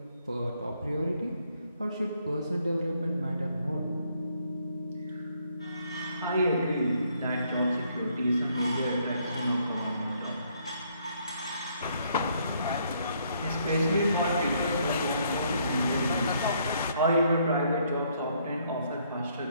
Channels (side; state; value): both; inverted; correlation -0.69